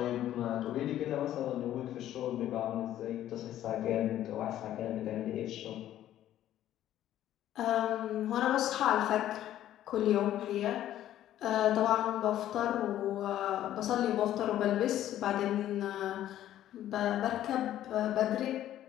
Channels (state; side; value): quieter; right; 12.4 dB